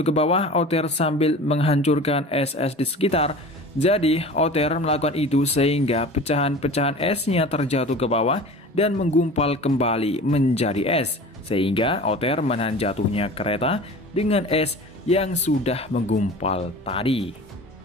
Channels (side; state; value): both; normal; correlation 0.38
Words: ke bawah. Otter sambil menghancurkan es-es di sekitar. Jadi Otter melakukan itu sehingga pecahan-pecahan esnya terjatuh ke bawah dan menggumpal kembali menjadi es. Sehingga Otter menahan jatuhnya kereta dengan es yang sudah menggumpal tadi.